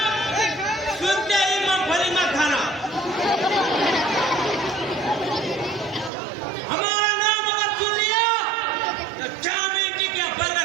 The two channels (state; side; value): drops out; left; at 6.1 s